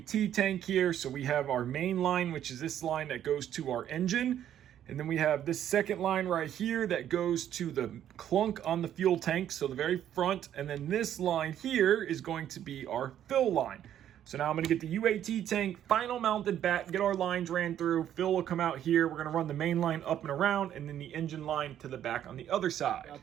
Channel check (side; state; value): left; quieter; 10.7 dB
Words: tank here. So we have our main line, which is this line that goes to our engine. And then we have this second line right here that goes to the clunk on the fuel tank, so the very front. And then this line here is going to be our fill line. So now I'm going to get the UAT tank final mounted back, get our lines ran through. Fill will come out here. We're going to run the main line up and around, and then the engine line to the back on the other side.